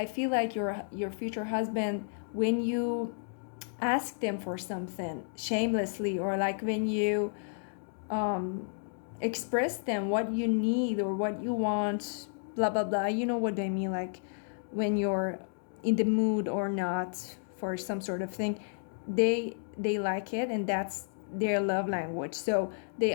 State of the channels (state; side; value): silent; right; digital silence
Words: feel like your future husband, when you ask them for something shamelessly, or like when you um express them what you need or what you want, blah blah blah, you know what I mean, like when you're in the mood or not for some sort of thing, they like it, and that's their love language. So they